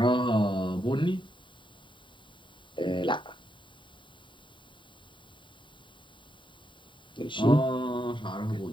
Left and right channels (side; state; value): right; late; 0.23 ms